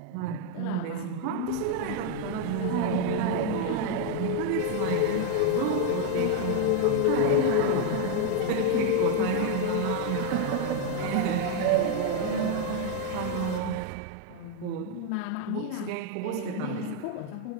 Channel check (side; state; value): both; different; correlation 0.00